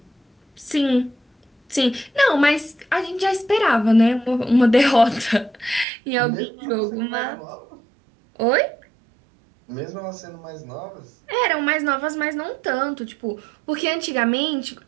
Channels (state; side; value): drops out; left; at 5.9 s